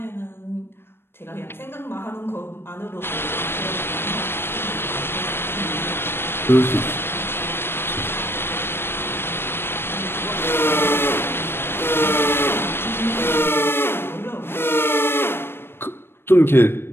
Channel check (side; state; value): right; late; 0.11 ms